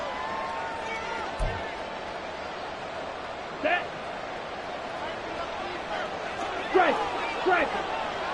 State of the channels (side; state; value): both; identical; correlation 1.00